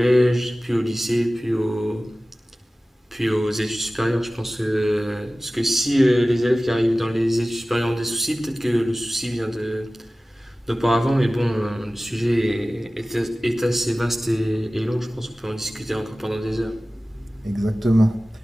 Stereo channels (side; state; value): both; normal; correlation 0.97